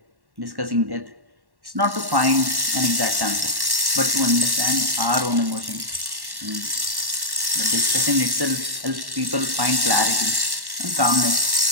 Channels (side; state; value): left; late; 1.1 ms